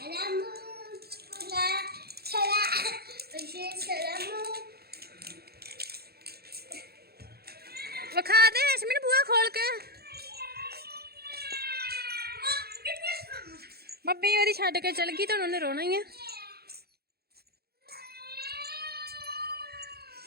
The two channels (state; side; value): late; left; 0.46 ms